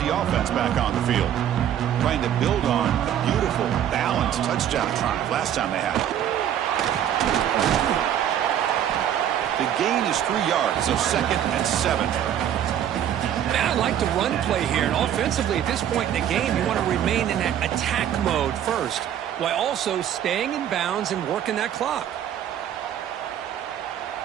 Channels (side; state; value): left; quieter; 10.3 dB